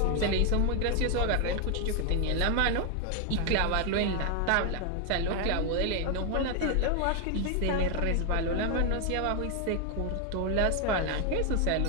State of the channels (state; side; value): different; both; correlation 0.01